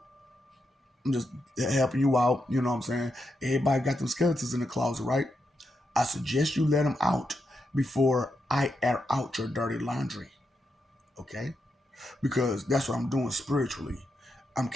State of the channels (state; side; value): normal; both; correlation 0.84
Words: I'm just helping you out. You know what I'm saying? Everybody got them skeletons in the closet, right? I suggest you let them out before I air out your dirty laundry. Okay? Because that's what I'm doing spiritually. I'm